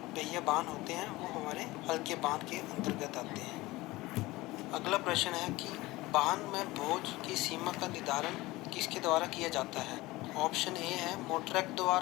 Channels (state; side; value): quieter; right; 19.8 dB